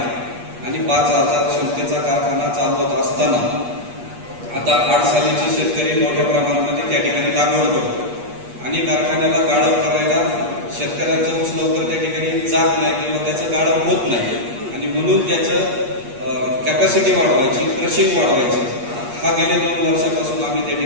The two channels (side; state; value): left; late; 8.4 ms